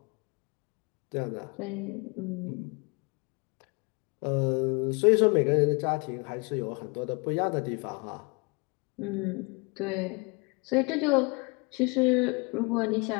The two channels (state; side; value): quieter; right; 30.4 dB